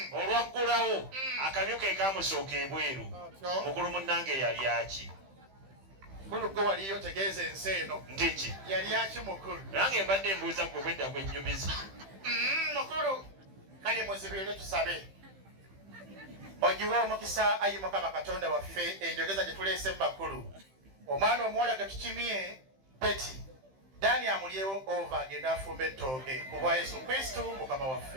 Olwaggulawo akamyu ke kaamusooka ebweru. Mukulu munnange yali aki? Mukulu gwe waliyo tegeeza ensi eno. Ndiki? Yali aki mukulu? Nange mbadde mbuuza gwe bwedda gwennyumiza. Mukulu kale muzibirire tusabe. Ogiwe omukisa ayi Mukama Katonda waffe enjogeza gye tuleese mu bakulu. Omwana omuwala ge tukimye Peti. Dani amulyewo ova agenda afumba ettooke ku bwa Yesu Kristo Mukama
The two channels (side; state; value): left; late; 15 ms